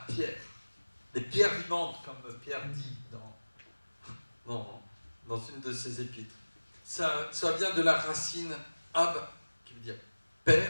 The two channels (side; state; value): both; inverted; correlation -1.00